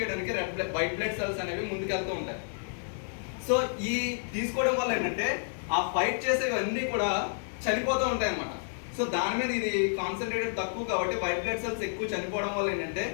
వైట్ బ్లడ్ సెల్స్ అనేవి ముందుకెళ్తూ ఉంటాయి. సో ఈ తీసుకోవడం వల్ల ఏంటంటే ఆ ఫైట్ చేసేవన్నీ కూడా చనిపోతూ ఉంటాయి అన్నమాట. సో దాని మీద ఇది కాన్సన్ట్రేటెడ్ తక్కువ కాబట్టి వైట్ బ్లడ్ సెల్స్ ఎక్కువ చనిపోవడం వల్ల ఏంటంటే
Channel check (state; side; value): silent; right; digital silence